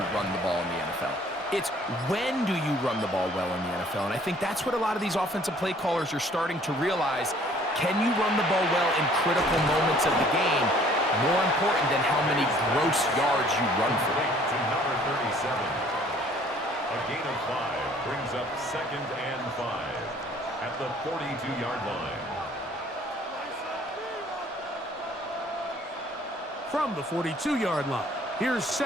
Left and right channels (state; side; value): normal; both; correlation 0.57